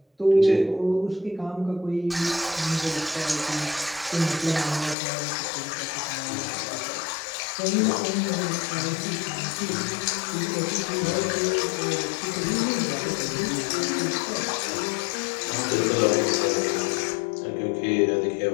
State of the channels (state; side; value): drops out; right; at 5.0 s